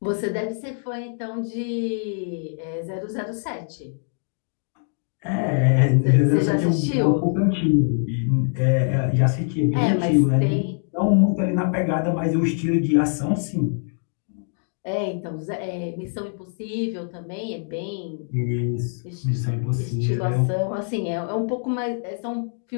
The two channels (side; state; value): right; silent; digital silence